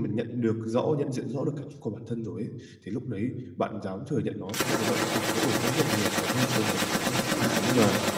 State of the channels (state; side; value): identical; both; correlation 1.00